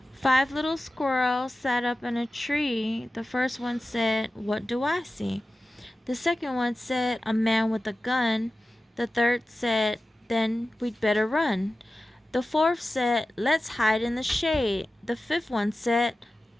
5 little squirrels sat up in a tree. The first one said, "What do I see?" The second one said, "A man with a gun." The third said, "Then we'd better run." The fourth said, "Let's hide in the shade." The fifth one said,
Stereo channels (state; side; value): normal; both; correlation 0.95